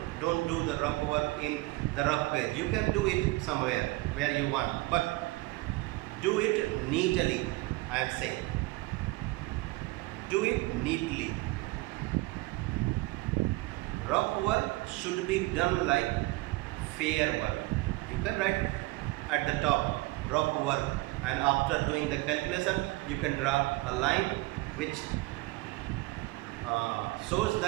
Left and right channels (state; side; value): quieter; left; 21.6 dB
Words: don't do the rough work in the rough page. You can do it somewhere where you want, but do it neatly. I am saying, do it neatly. Rough work should be done like fair work. You can write at the top, rough work, and after doing the calculation you can draw a line which shows